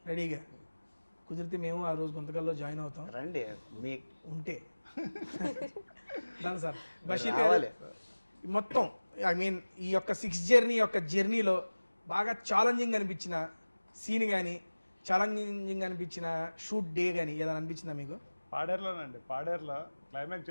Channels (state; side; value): inverted; both; correlation -1.00